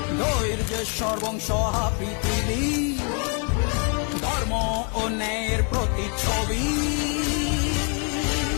ধৈর্যেশ্বর বংশহা পৃথিবী, ধর্ম ও ন্যায়ের প্রতিচ্ছবি।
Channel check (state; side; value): quieter; right; 38.7 dB